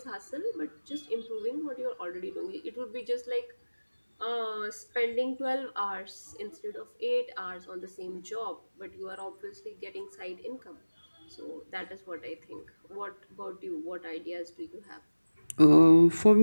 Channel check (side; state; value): both; inverted; correlation -1.00